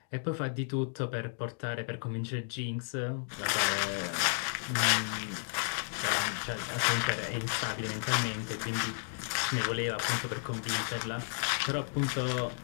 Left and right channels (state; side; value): silent; right; digital silence